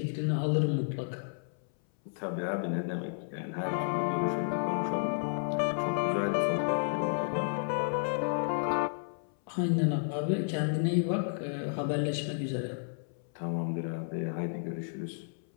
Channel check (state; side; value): silent; right; 56 dB below the other